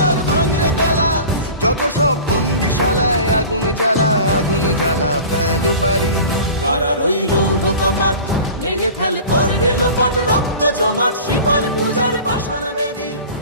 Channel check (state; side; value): inverted; both; correlation -0.38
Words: ভাঙরে তালা যত সব বন্দিশালায়, আগুন জ্বালা আগুন জ্বালা ফেলো পারি। কারার ওই লৌহ কপাট ভেঙে ফেল কর রে লোপাট, রক্ত জমাট শিকল পূজার পাষাণ বেদী।